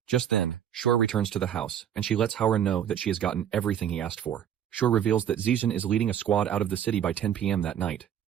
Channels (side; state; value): left; quieter; 9.5 dB